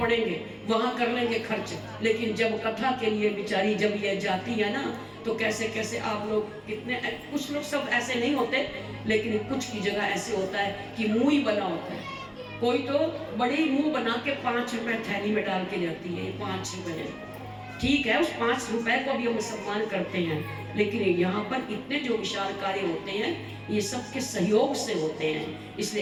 वहां कर लेंगे खर्च। लेकिन जब कथा के लिए बेचारी जब ये जाती है ना, तो कैसे कैसे आप लोग कितने, कुछ लोग सब ऐसे नहीं होते, लेकिन कुछ की जगह ऐसे होता है कि मुंह ही बना होता है। कोई तो बड़ी मुंह बना के 5 रुपए थैली में डाल के जाती है, 5 रुपए, ठीक है, उस 5 रुपए को भी हम सम्मान करते हैं, लेकिन यहाँ पर इतने जो विशाल कार्य होते हैं ये सबके सहयोग से होते हैं,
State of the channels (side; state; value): both; identical; correlation 1.00